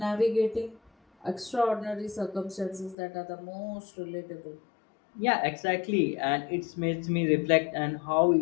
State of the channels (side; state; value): right; drops out; at 3.0 s